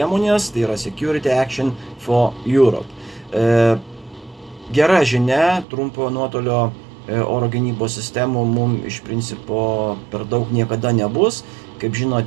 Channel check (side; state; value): left; drops out; at 5.7 s